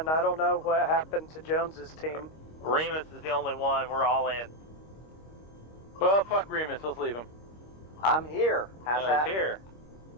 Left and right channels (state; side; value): late; right; 25 ms